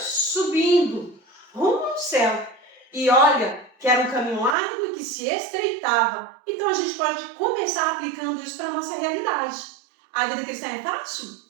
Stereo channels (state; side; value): drops out; left; at 4.5 s